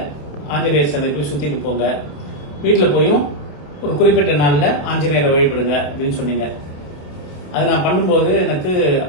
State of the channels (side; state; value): right; late; 27 ms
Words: ஆஞ்சநேயர் சன்னதி போய் சுத்திட்டு போங்க, வீட்டில் போயும் ஒரு குறிப்பிட்ட நாளில் ஆஞ்சநேயரை வழிபடுங்க அப்படின்னு சொன்னீங்க. அது நான் பண்ணும்போது எனக்கு